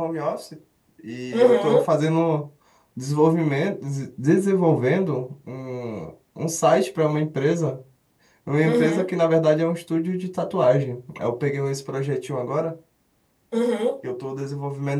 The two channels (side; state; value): both; identical; correlation 1.00